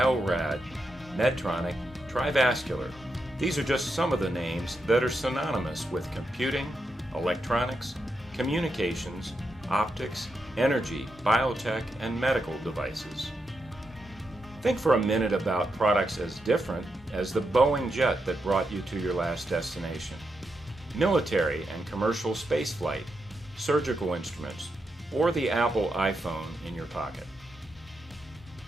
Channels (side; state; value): both; normal; correlation 0.85